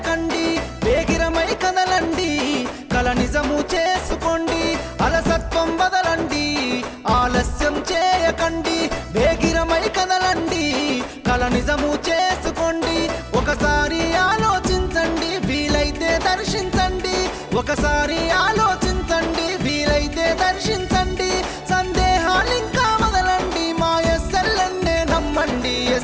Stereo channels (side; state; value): both; identical; correlation 1.00